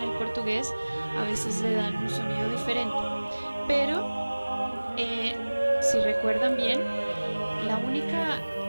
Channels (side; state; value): both; inverted; correlation -1.00